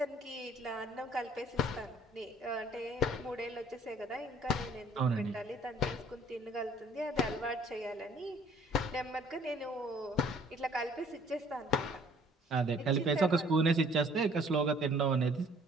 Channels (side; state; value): both; normal; correlation 0.57